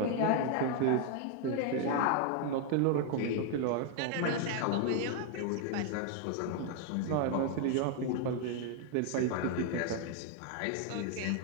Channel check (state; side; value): different; both; correlation 0.00